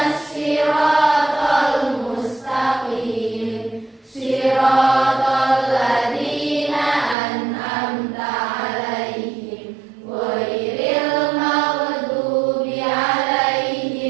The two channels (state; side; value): drops out; left; at 7.2 s